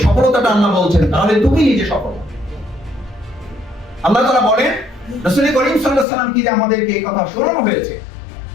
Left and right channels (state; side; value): drops out; right; at 6.1 s